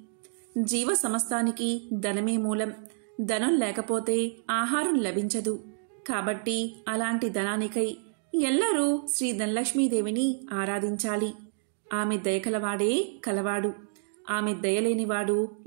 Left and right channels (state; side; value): silent; left; digital silence